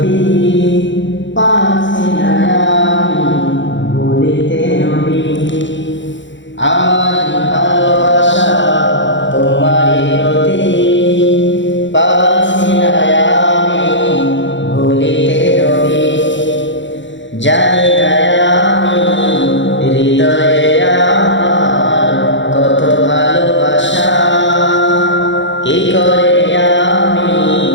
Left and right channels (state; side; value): late; right; 0.54 ms